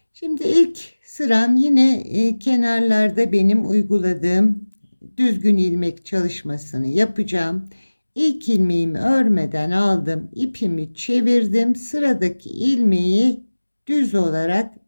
Şimdi ilk sıram yine kenarlarda benim uyguladığım düzgün ilmek çalışmasını yapacağım. İlk ilmeğimi örmeden aldım, ipimi çevirdim, sıradaki ilmeği düz olarak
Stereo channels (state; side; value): inverted; both; correlation -1.00